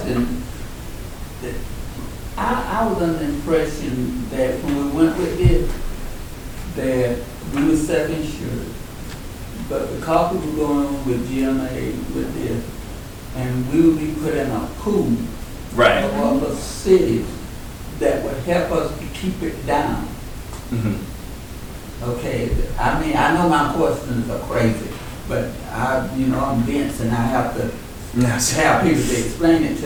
I was under the impression that when we went with it, that we were self-insured. But because we were going with GMA with this, and we would be put in a pool Right. of other cities that would help us to keep it down. Mm-hmm. Okay, I mean, I know my questions are crazy, but I'm dense and I have to have people to explain it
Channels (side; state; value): both; identical; correlation 1.00